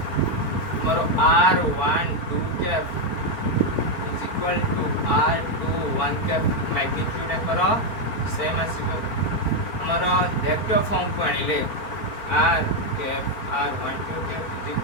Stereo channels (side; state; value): right; late; 4.4 ms